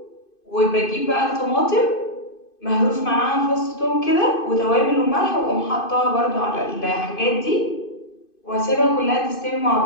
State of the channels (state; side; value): late; right; 2.5 ms